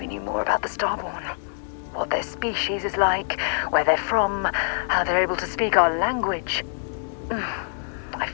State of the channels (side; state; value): right; silent; digital silence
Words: knew more about the Starborn. What their species is like, where they're from, how they're able to speak our language. I